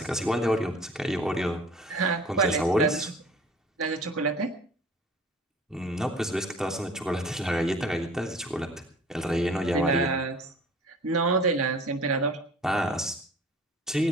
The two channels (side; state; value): both; normal; correlation 0.47